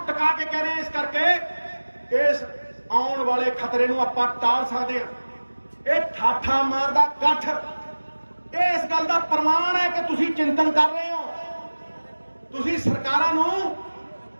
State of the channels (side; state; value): both; inverted; correlation -1.00